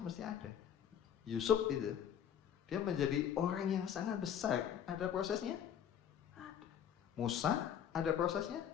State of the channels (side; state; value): right; quieter; 9.1 dB